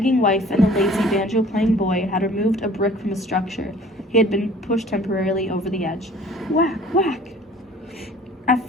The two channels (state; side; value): normal; both; correlation 0.50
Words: wife and the lazy banjo-playing boy had removed a brick from a structure. He had been pushed temporarily over the edge. Whack, whack! At